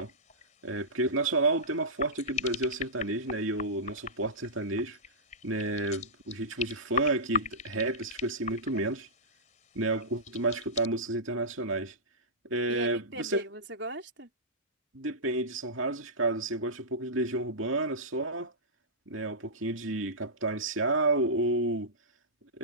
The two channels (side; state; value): both; normal; correlation -0.16